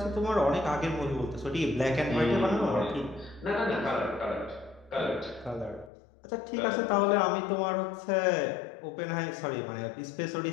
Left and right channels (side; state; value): right; drops out; at 5.9 s